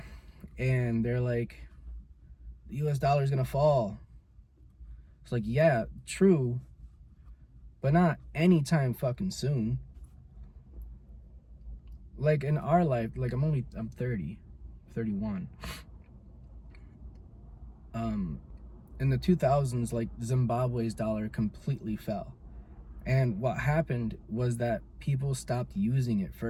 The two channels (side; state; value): both; identical; correlation 1.00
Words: and they're like, the US dollar is gonna fall, it's like, yeah, true, but not anytime fucking soon. Like in our life, like I'm 30, 31. In the 2000s, like Zimbabwe's dollar completely fell. And what happened was that people stopped using it